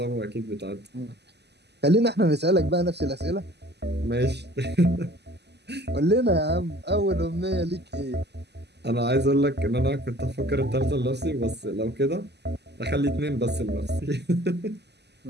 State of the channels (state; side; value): late; left; 0.49 ms